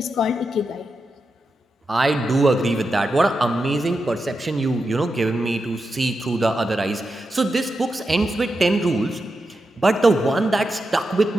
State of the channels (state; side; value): normal; both; correlation 0.88